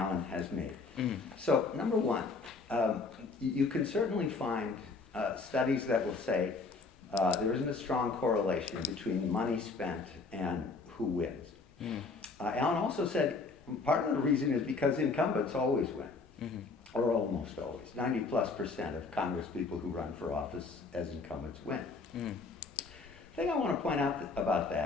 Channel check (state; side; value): quieter; right; 4.1 dB